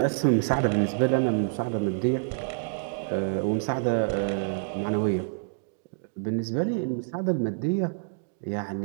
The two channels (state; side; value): silent; left; digital silence